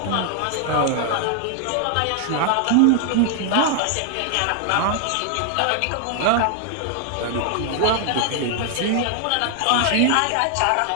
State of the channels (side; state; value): both; different; correlation 0.00